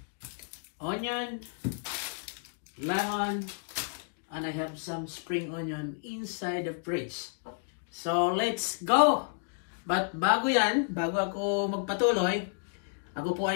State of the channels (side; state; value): right; silent; digital silence